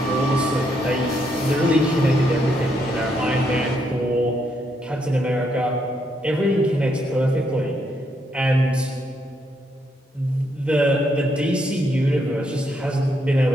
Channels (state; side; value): normal; both; correlation 0.76